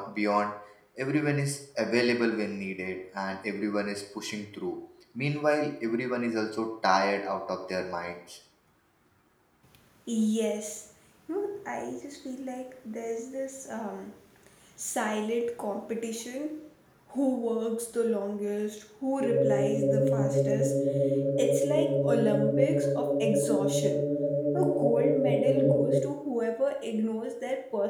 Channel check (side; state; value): both; identical; correlation 1.00